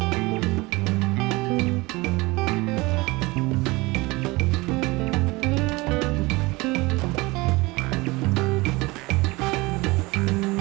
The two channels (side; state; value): left; quieter; 22.9 dB